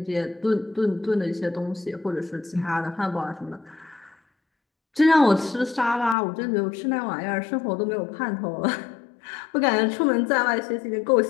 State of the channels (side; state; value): right; drops out; at 6.2 s